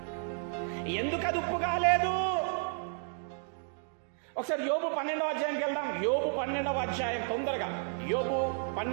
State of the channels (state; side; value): silent; left; 56 dB below the other